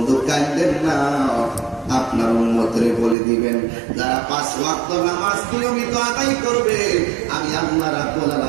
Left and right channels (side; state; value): left; drops out; at 3.2 s